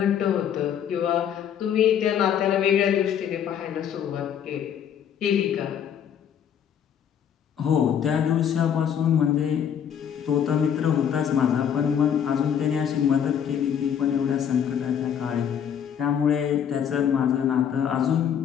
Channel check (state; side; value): quieter; right; 8.6 dB